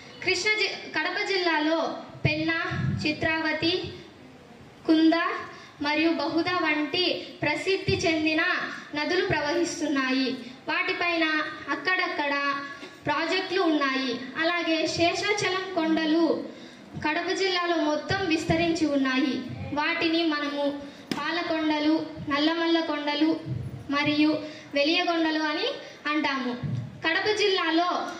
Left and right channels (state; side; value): identical; both; correlation 1.00